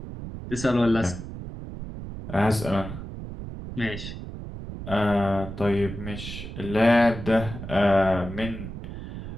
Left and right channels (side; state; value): right; noise; rumble, 9 dB below the sound